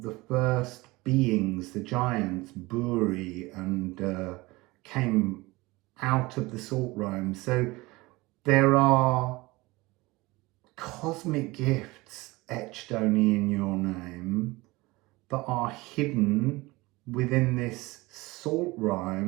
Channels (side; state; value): left; quieter; 21.8 dB